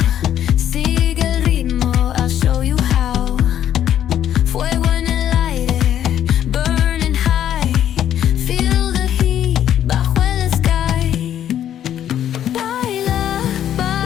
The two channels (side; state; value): right; quieter; 10.6 dB